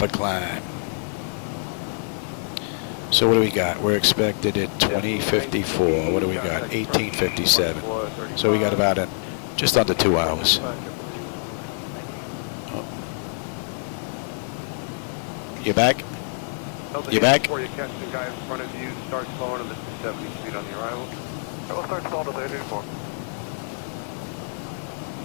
of climb. So what do we got? We're expected at 2054. What do we got? 1857. So we got about just under 2 hours. Oh. You back? You back? Before you catch the guy in front of you, start slowing to the 270 speed on the arrival. We'll start slowing to the 884.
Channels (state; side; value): silent; right; 60 dB below the other